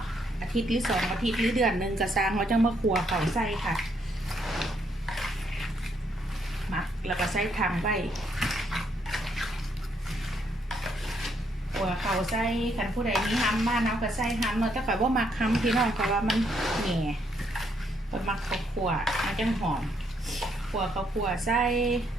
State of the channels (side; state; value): both; normal; correlation 0.73